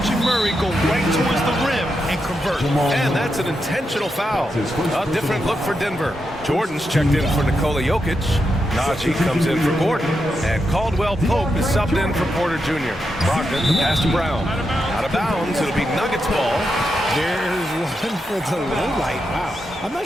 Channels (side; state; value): both; normal; correlation 0.85